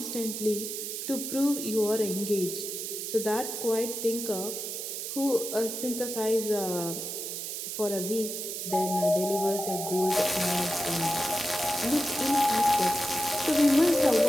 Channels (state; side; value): noise; right; hiss, 5 dB below the sound